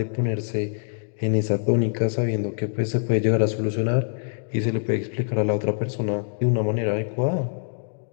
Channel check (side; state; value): right; silent; digital silence